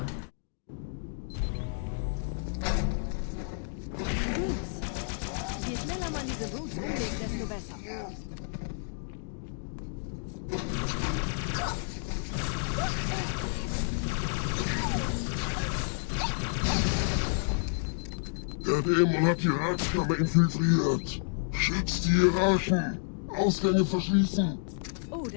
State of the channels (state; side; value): silent; right; digital silence